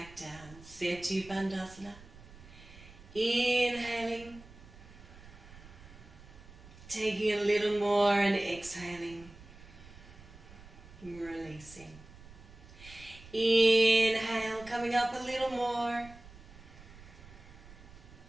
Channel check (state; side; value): noise; right; rumble, 19 dB below the sound